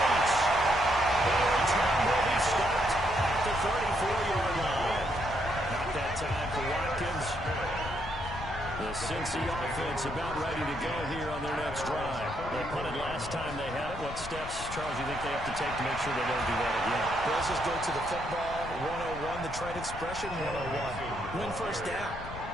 The return will be stopped at the 34-yard line. Not that time for Watkins. The Cincy offense about ready to go here on their next drive. They punted last time they had it. What steps, Charles, you think they have to take to make sure they don't do that again? Let's just go to the football 101, the trade expression 101. Win first down.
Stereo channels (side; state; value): left; noise; rumble, 11 dB below the sound